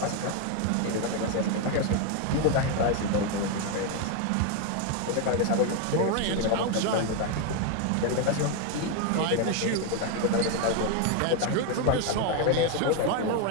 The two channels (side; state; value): both; different; correlation 0.01